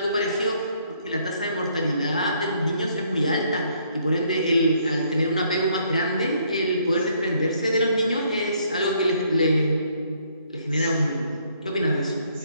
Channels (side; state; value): both; inverted; correlation -0.68